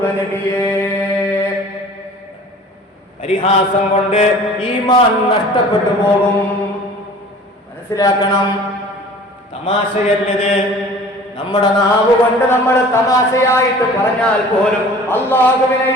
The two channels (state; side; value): normal; both; correlation 0.45